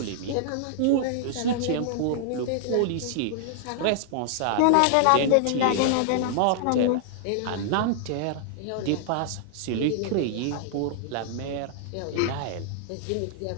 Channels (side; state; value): both; different; correlation -0.01